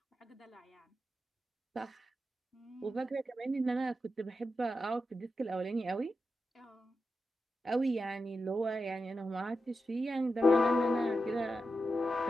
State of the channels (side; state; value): both; normal; correlation 0.89